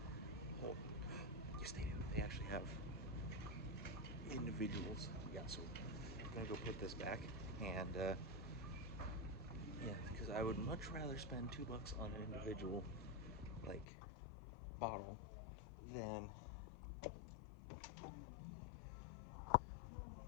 whole. Yes, they do. They actually have individuals. Yeah. So I'm gonna go put this back, and yeah, because I would much rather spend $2 on an individual like bottle than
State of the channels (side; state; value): right; drops out; at 13.9 s